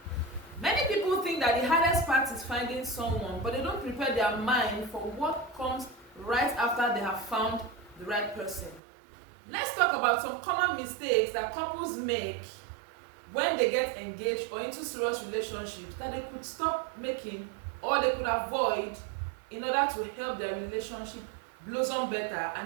Many people think that the hardest part is finding someone, but they don't prepare their mind for what comes right after they have found the right person. Let's talk about some common mistakes that couples make when they get engaged or into serious relationships that they could stop making or they could avoid in order to help their relationship blossom better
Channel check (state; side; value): drops out; left; at 8.8 s